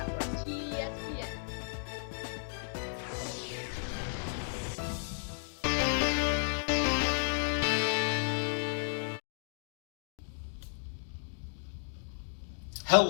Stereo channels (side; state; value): right; silent; digital silence